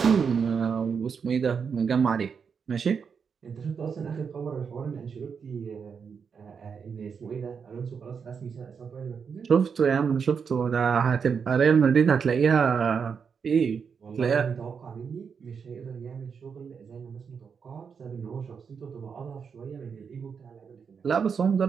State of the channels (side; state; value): left; quieter; 6.3 dB